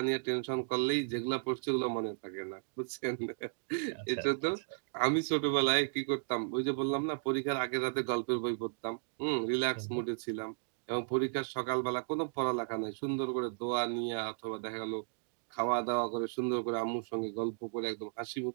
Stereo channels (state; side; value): silent; left; digital silence